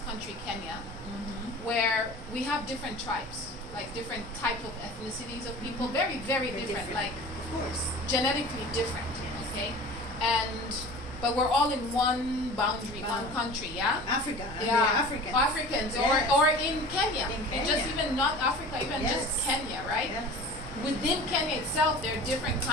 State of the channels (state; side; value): normal; both; correlation 0.39